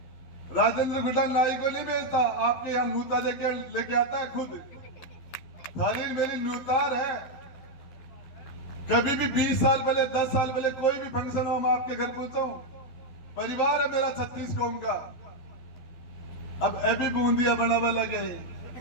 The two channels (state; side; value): late; right; 11 ms